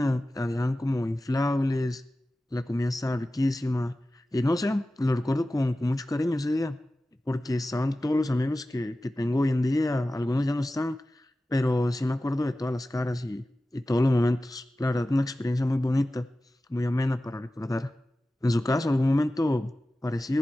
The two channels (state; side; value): normal; both; correlation 0.95